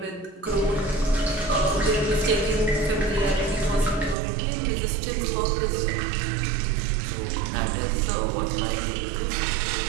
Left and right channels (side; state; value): left; drops out; at 4.2 s